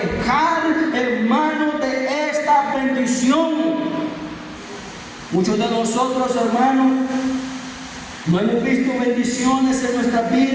hermano, de esta bendición. Muchos de nosotros, hermanos, no hemos visto bendiciones en nuestras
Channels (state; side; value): identical; both; correlation 1.00